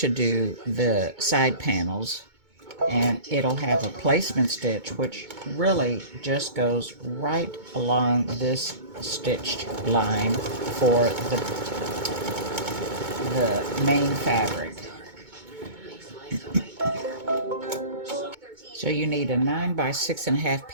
do the side panels, and it'll have a placement stitch which really just goes right along this stitched line for the main fabric. So you need a 9 by 6.5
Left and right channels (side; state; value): left; late; 2.2 ms